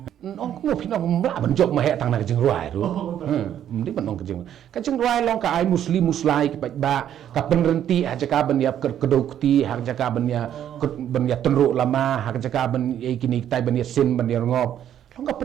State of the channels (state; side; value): quieter; left; 10.4 dB